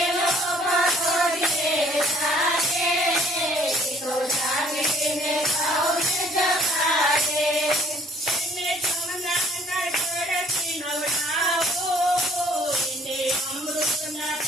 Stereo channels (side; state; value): both; normal; correlation 0.59